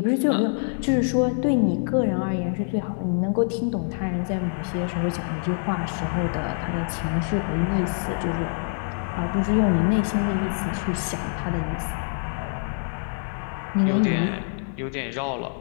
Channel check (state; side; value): silent; right; 62 dB below the other